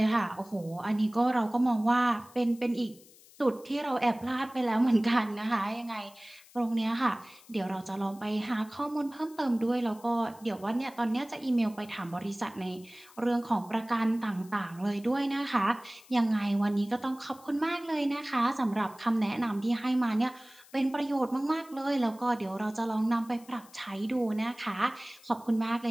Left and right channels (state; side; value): noise; left; hiss, 24 dB below the sound